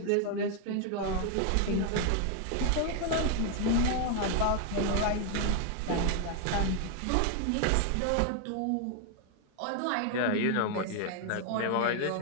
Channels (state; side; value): different; both; correlation 0.00